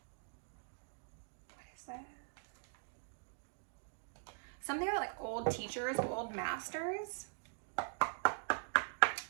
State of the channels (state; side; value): silent; left; digital silence